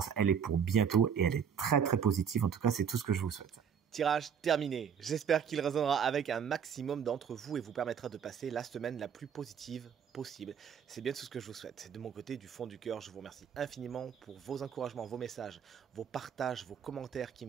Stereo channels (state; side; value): quieter; left; 7.5 dB